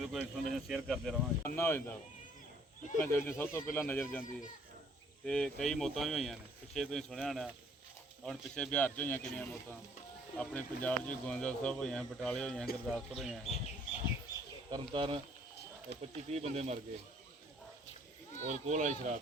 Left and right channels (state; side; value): normal; both; correlation 0.60